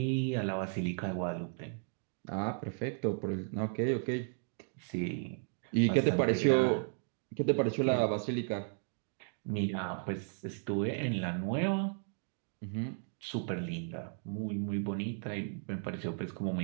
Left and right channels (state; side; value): silent; left; 55 dB below the other